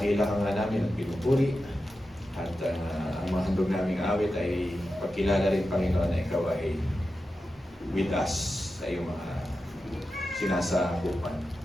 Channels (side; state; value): both; normal; correlation 0.91